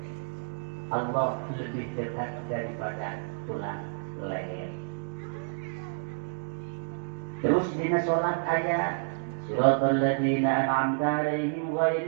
Allah lebih dekat daripada tulang leher. Terus dina sholat ayat Siratal ladzina an'amta 'alaihim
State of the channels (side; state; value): left; silent; digital silence